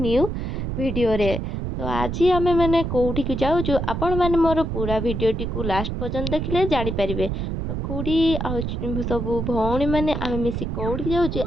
वीडियो रे। तो आज आमे माने कोठी के जाउछु, आपण माने मोर पूरा वीडियो टी को लास्ट पर्यंत देखले जानि परिबे। तो कोडी आ सब भौणी माने आमे मिसी कोठी जाउछु,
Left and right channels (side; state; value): right; noise; rumble, 3 dB below the sound